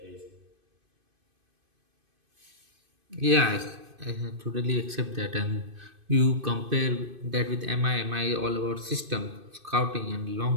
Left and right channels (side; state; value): left; late; 2.5 ms